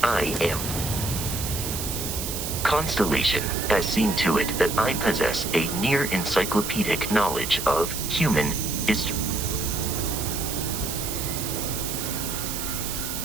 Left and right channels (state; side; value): noise; right; hiss, 5 dB below the sound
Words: I am. Constellation has seen to it that I possess a near encyclopedic knowledge of human history.